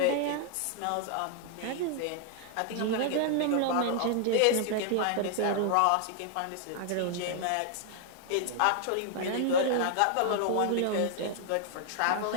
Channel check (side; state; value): both; different; correlation 0.00